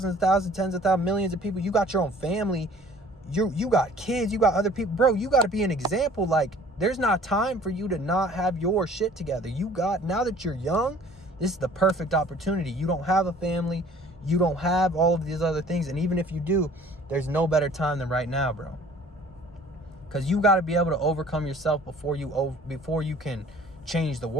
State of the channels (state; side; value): normal; both; correlation 0.51